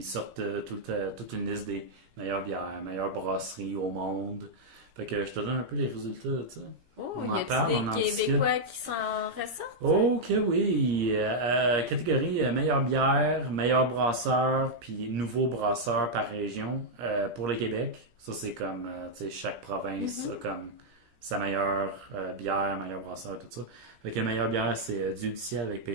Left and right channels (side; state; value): left; late; 17 ms